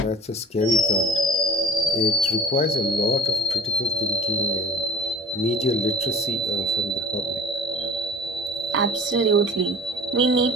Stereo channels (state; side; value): normal; both; correlation 0.44